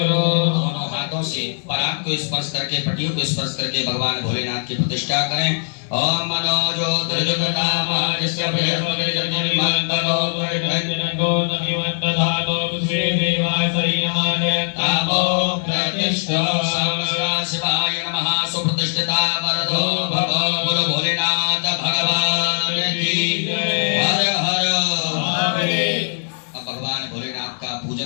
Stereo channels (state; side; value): silent; right; digital silence